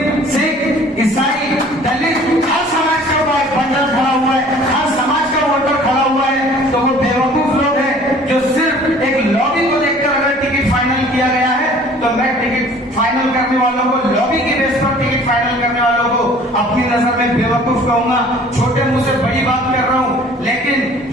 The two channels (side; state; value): both; normal; correlation 0.51